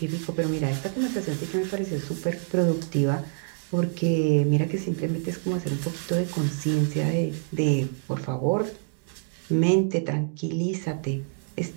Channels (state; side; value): silent; left; 57 dB below the other